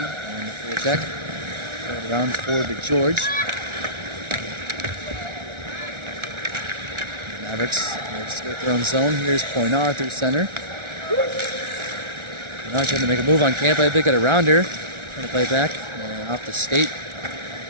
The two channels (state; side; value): late; left; 1.4 ms